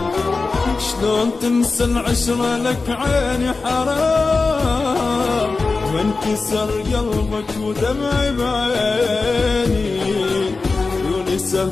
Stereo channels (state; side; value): quieter; right; 3.9 dB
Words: شلون تنسى العشرة لك عيني حرام وانكسر قلبك ودمعي بعيني عيوني